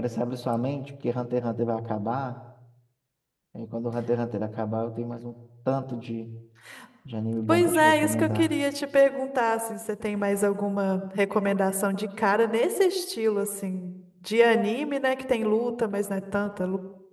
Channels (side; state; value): both; identical; correlation 1.00